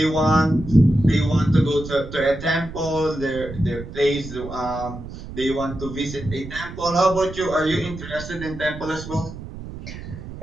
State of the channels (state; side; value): noise; right; rumble, 12 dB below the sound